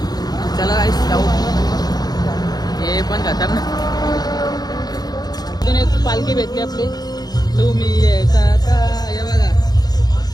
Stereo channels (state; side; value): late; right; 0.19 ms